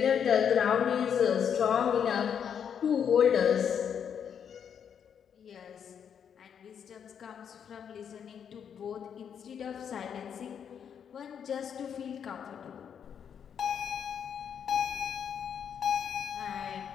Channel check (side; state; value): right; quieter; 7.9 dB